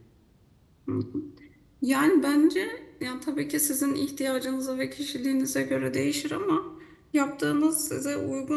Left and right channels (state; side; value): identical; both; correlation 1.00